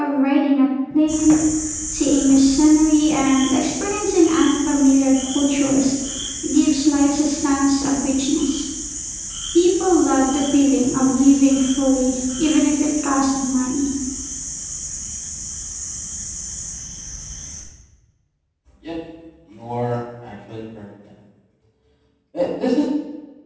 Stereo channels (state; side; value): identical; both; correlation 1.00